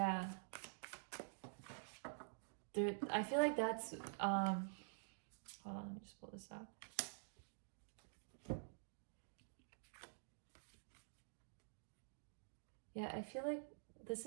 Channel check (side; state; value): left; silent; digital silence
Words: I feel like that's, hold on, let me just pull this out. Yeah, I feel like this